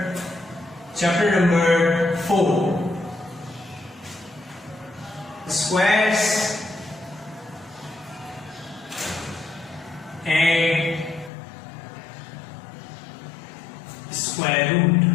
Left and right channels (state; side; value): drops out; right; at 11.3 s